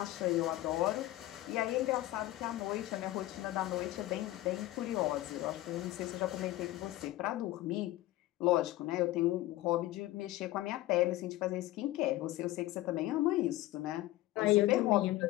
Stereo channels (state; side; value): quieter; right; 16.4 dB